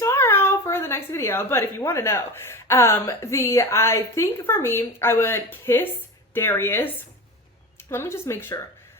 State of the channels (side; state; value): both; normal; correlation 0.28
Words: for the next video. But if you want to know, I think for me, I would kiss Darius. Let me just make sure.